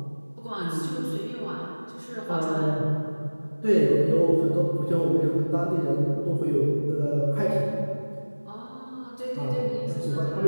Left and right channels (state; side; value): inverted; both; correlation -1.00